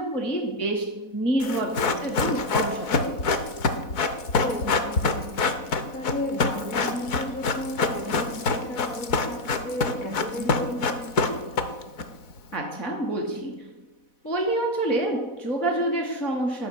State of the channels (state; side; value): late; right; 4.1 ms